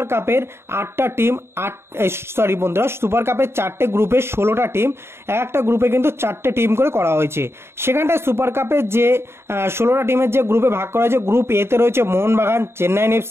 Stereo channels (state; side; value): late; left; 0.12 ms